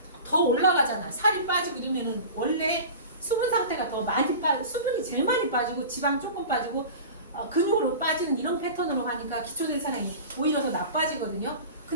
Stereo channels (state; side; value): inverted; both; correlation -0.35